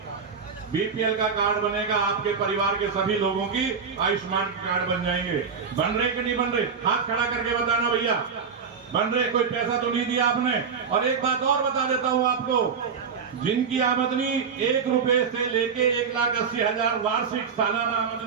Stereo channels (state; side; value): quieter; left; 6.1 dB